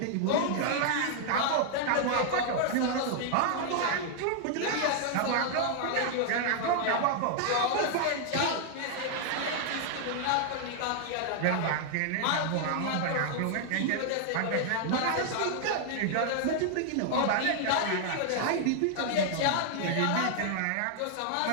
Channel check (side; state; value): both; different; correlation 0.00